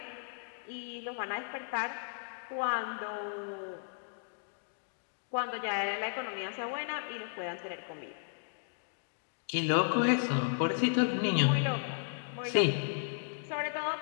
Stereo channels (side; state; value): right; silent; digital silence